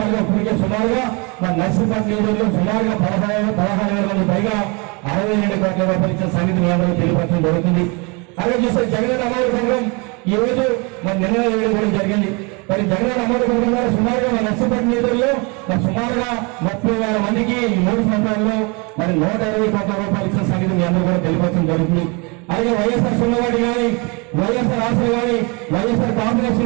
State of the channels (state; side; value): quieter; left; 30.1 dB